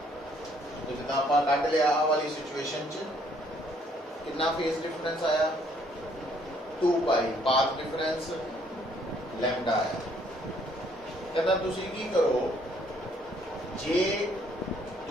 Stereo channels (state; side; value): normal; both; correlation 0.65